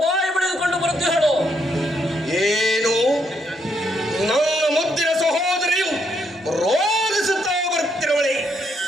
ಬಾಯಿ ಬಿಡಿದುಕೊಂಡು ಬರುತ್ತಿಹಳು. ಏನು? ನನ್ನ ಮುದ್ದಿನ ಸಹೋದರಿಯು ರೋಧಿಸುತ್ತಾ ಬರುತ್ತಿರುವಳೆ.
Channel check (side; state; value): both; normal; correlation 0.75